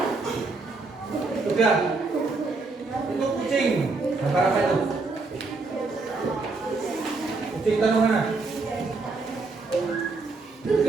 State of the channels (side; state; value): left; quieter; 3.8 dB